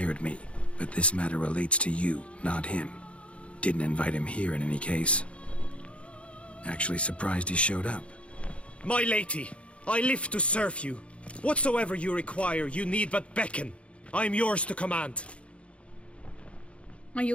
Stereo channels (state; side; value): late; right; 0.061 ms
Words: me, but this matter relates to you, not him. Didn't invite him here in any case. Actually surprised he showed up. My lady, I live to serve you. Whatsoever you require, you need but beckon. I am yours to command. Are